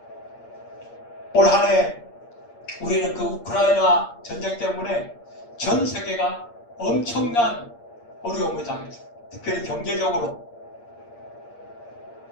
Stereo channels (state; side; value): late; right; 8.6 ms